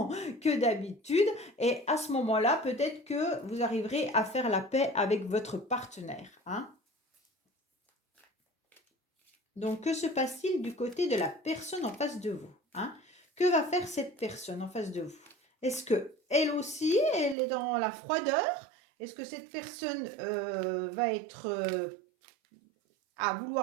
que d'habitude, et à ce moment-là, peut-être que vous arriverez à faire la paix avec votre partenaire, hein. Donc, que se passe-t-il du côté de la personne en face de vous, hein? Que va faire cette personne en face de vous? Est-ce que elle aussi, elle est dans la froideur? Est-ce que cette personne va être à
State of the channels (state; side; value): drops out; left; at 17.4 s